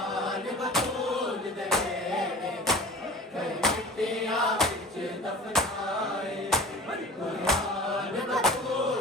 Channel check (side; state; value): both; normal; correlation 0.40